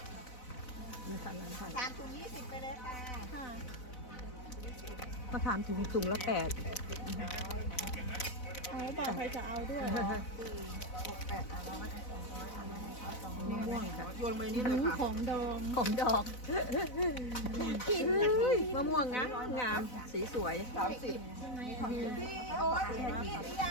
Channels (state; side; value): late; right; 4.0 ms